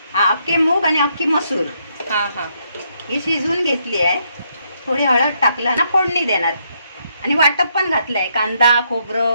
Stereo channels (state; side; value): inverted; both; correlation -0.74